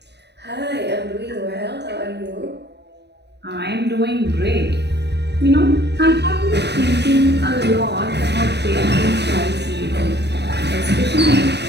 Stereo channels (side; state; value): left; late; 0.49 ms